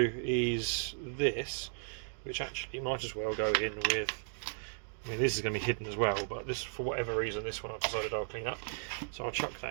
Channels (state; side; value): silent; left; digital silence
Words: do is this, which actually might as well go in with, I mean, this is going to be hidden as well, but this, for whatever reason, this one I've decided I'll clean up, so I'll chuck